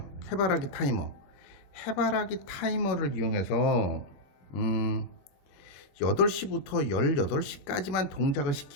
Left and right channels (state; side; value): late; right; 21 ms